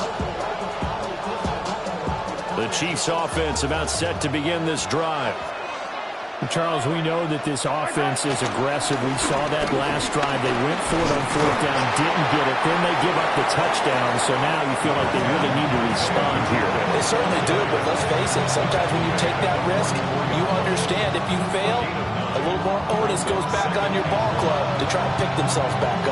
The Chiefs offense about set to begin this drive. Charles, we know that this offense is aggressive. We saw that last drive. They went for it on fourth down, didn't get it. Then they give up the touchdown. So now you feel like they really need to respond here. They certainly do, but let's face it. Sometimes when you take that risk, you understand if you fail, a little more onus goes back on your ball club to try and pick themselves back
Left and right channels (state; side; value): identical; both; correlation 1.00